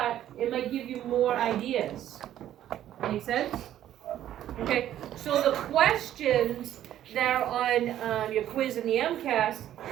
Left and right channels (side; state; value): left; quieter; 11.9 dB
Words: it might give you more ideas. Make sense? Okay, so the questions that are on your quiz in the MCAS,